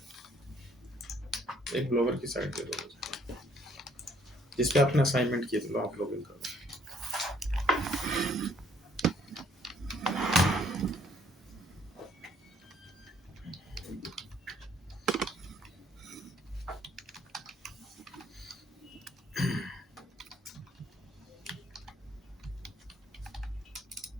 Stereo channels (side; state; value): both; normal; correlation 0.64